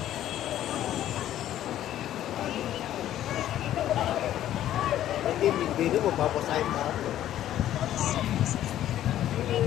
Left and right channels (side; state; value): right; quieter; 12.3 dB